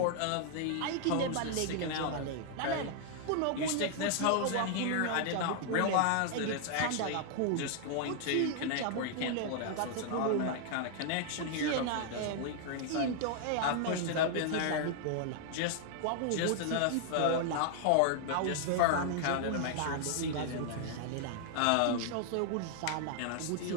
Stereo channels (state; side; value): different; both; correlation -0.01